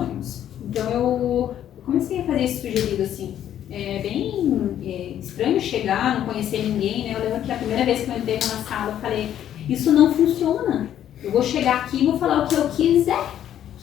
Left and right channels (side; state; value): right; quieter; 10.8 dB